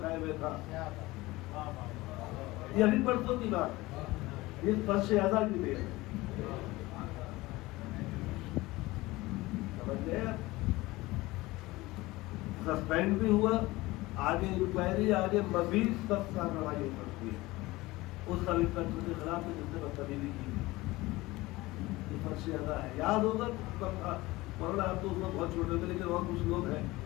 ہوئے تھا. یہ ابھی پرسوں کی بات ہے، اس فرش اعضا کی دیر ہے. سمجھ گئے؟ سسپینڈ بھی ہوا، آگے انکوائری، آگے مزید سخت کارروائی ہو سکتی ہے اس سب انسپیکٹر کے خلاف جس نے بدتمیزی کی. یہ فرش اعضا ہے. یاد ہوگا مولانا آپ تو اس وقت بہت چھوٹے تھے، لیکن اور کچھ لوگ ہیں،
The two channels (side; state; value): right; quieter; 20.0 dB